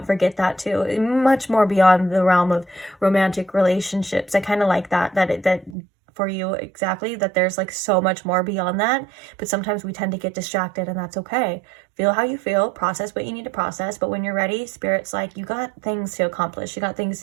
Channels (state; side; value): drops out; left; at 5.8 s